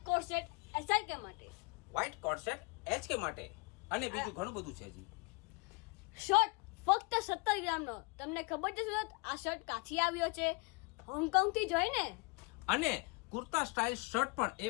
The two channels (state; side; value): quieter; right; 29.1 dB